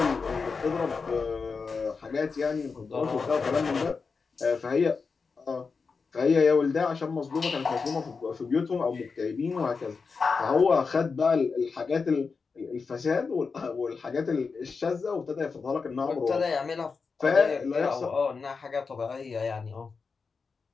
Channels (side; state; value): right; quieter; 4.9 dB